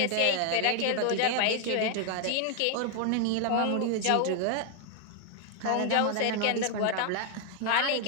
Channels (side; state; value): both; different; correlation 0.00